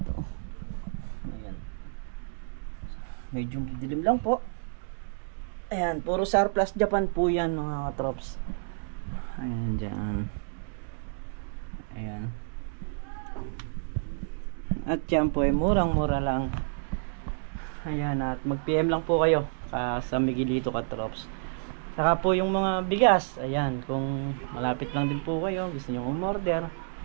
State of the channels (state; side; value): silent; left; digital silence